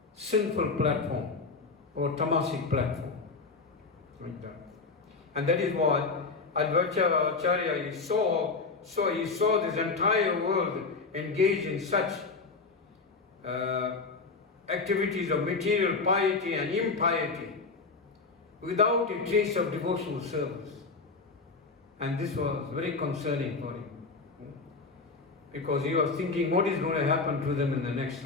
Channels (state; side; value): quieter; right; 4.2 dB